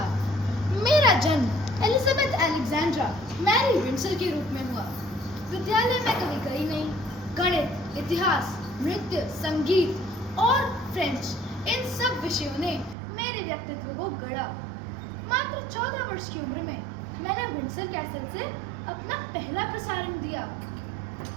मेरा जन्म एलिजाबेथ अलेक्जेंड्रा मैरी विंडसर के रूप में हुआ। विद्यालय में कभी गई नहीं। गणित, इतिहास, नृत्य, संगीत और फ्रेंच, इन सब विषयों ने मेरे व्यक्तित्व को गढ़ा। मात्र 14 वर्ष की उम्र में मैंने विंडसर कैसल से अपना पहला प्रसारण दिया।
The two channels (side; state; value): left; drops out; at 13.0 s